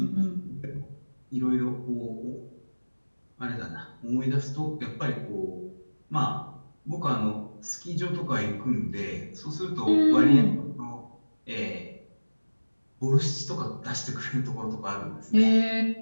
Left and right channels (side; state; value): both; inverted; correlation -1.00